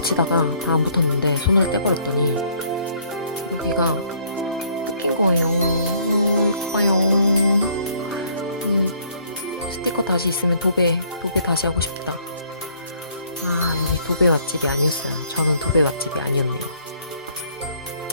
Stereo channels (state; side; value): inverted; both; correlation -0.62